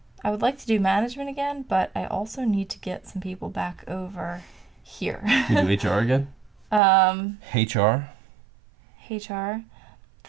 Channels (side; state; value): left; drops out; at 6.8 s